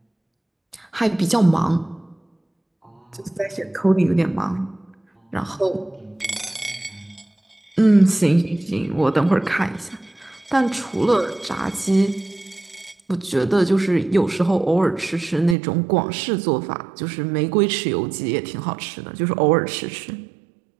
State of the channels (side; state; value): left; drops out; at 15.6 s